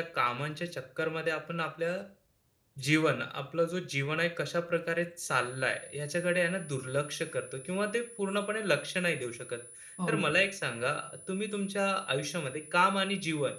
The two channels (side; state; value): both; identical; correlation 1.00